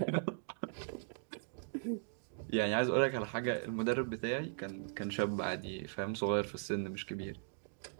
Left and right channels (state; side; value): silent; left; digital silence